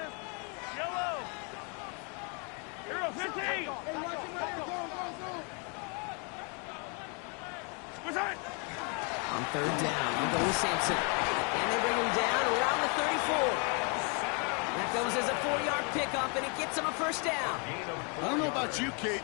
Yellow. Hero 15. What's that? On 3rd down, we'll go with Sampson. And they bring him down around the 34. That goes as a 4-yard pickup, and it gets him a first down. I don't know about you, Kate,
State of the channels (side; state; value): right; quieter; 35.8 dB